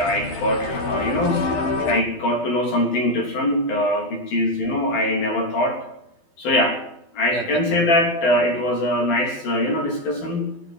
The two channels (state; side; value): late; right; 12 ms